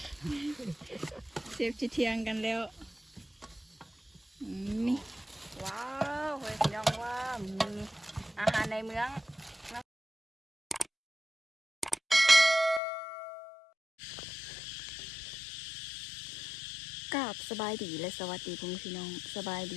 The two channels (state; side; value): drops out; right; at 12.8 s